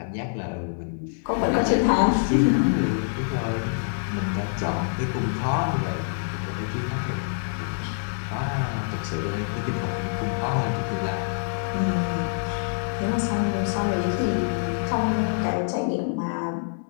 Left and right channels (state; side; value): silent; right; digital silence